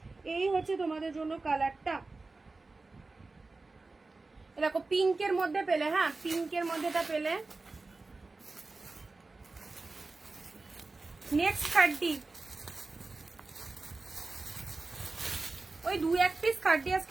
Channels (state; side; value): quieter; left; 3.6 dB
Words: এই হচ্ছে তোমাদের জন্য কালারটা। দেখো পিঙ্কের মধ্যে পেলে, হ্যাঁ পিঙ্কের মধ্যেটা পেলে। নেক্সট খাড্ডি, ওই 2-1 পিস খাড্ডি